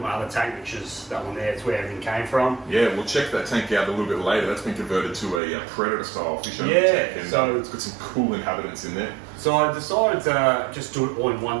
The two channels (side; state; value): left; drops out; at 5.4 s